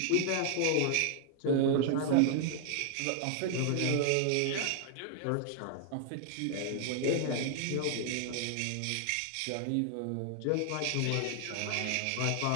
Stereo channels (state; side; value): different; both; correlation 0.00